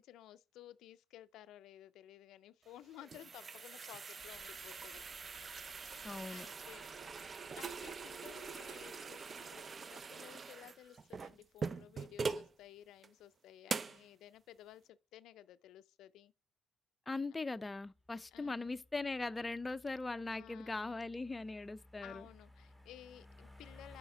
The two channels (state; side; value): normal; both; correlation 0.87